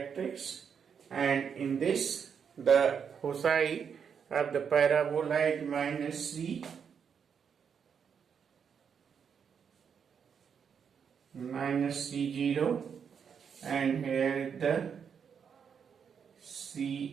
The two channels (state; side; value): quieter; left; 7.1 dB